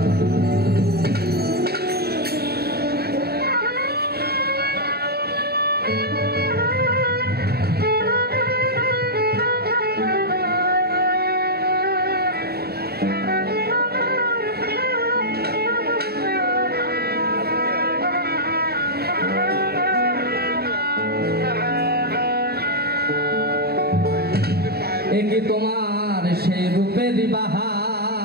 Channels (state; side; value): late; left; 0.46 ms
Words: কি তোমার সেই রূপের